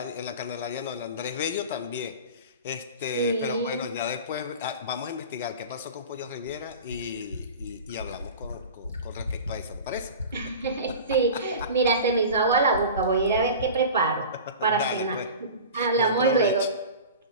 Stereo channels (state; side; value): inverted; both; correlation -0.35